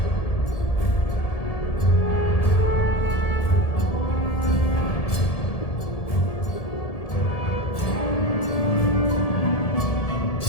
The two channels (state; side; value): late; right; 1.7 ms